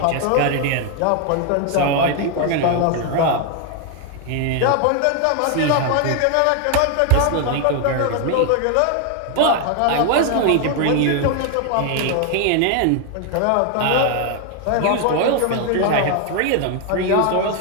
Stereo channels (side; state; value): both; different; correlation 0.01